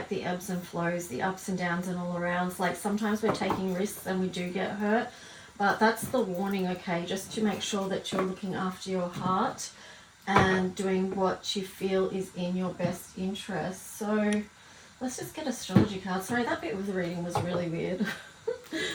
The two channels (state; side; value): identical; both; correlation 1.00